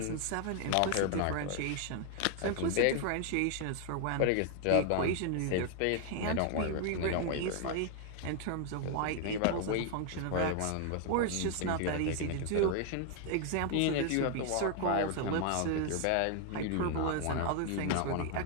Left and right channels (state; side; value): different; both; correlation 0.00